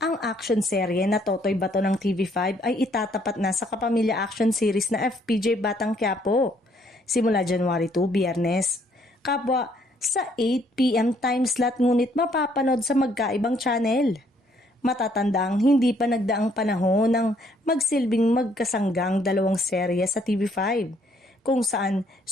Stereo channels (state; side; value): normal; both; correlation 0.66